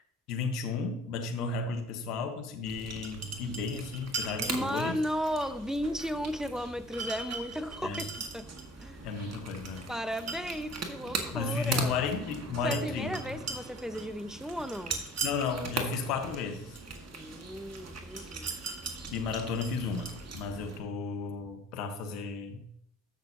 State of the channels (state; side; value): normal; both; correlation 0.48